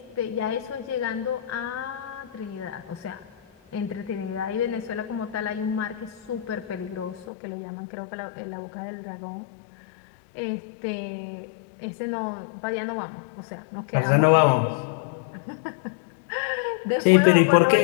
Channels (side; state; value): right; drops out; at 7.2 s